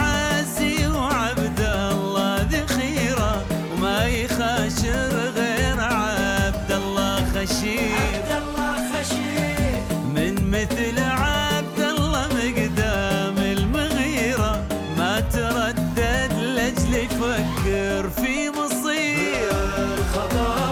وعبد الله ذخيرة وما يخاشر غير عبد الله خشير من مثل عبد الله مقدام المغيرة ما تردد لأجل يفكر في مصير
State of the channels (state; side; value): identical; both; correlation 1.00